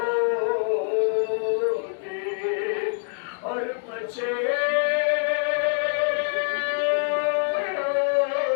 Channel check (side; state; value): right; silent; digital silence